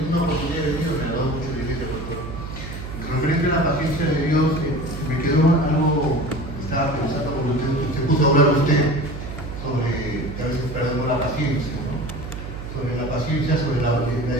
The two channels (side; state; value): right; noise; hum, 9 dB below the sound